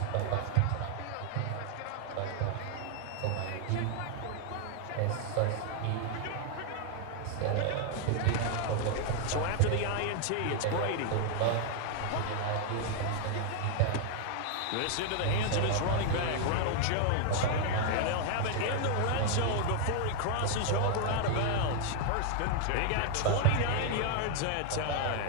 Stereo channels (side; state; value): both; different; correlation 0.00